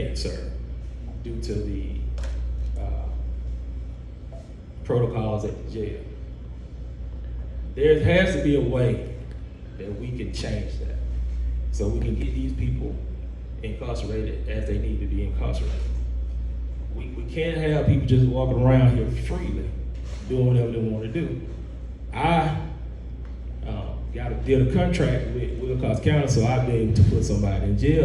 serve due to the protocols at the jail. There has to be a way that we can change that so we can get these people incarcerated as they need to be incarcerated. We can't have people just walking around here freely doing whatever they want to do. I did a contract with Wilcox County so I'd be able to put somebody in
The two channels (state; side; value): identical; both; correlation 1.00